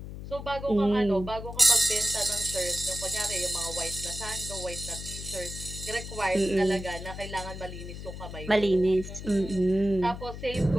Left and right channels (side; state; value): left; noise; hum, 10 dB below the sound